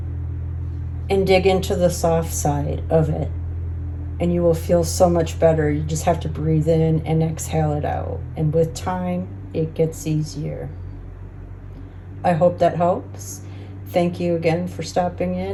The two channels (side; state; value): both; identical; correlation 1.00